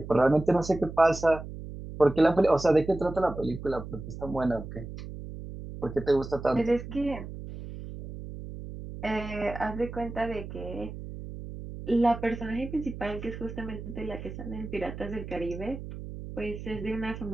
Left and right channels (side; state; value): right; noise; hum, 10 dB below the sound